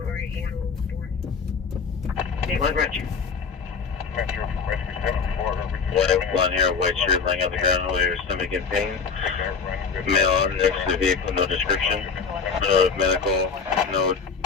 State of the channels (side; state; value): right; quieter; 5.5 dB